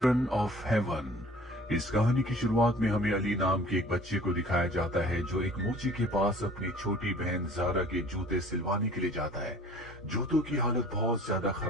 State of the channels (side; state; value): both; normal; correlation 0.49